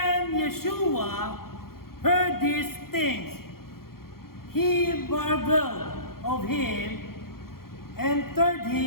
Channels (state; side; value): late; right; 0.93 ms